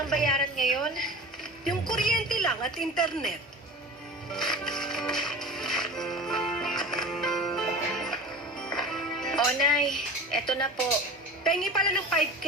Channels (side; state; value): both; normal; correlation 0.35